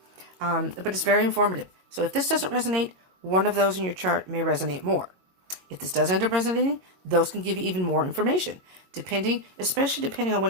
But it's very informative. So if this doesn't resonate, one of those in your chart may resonate more. If this does end up resonating, those can give you even more information, especially depending on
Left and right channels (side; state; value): left; late; 22 ms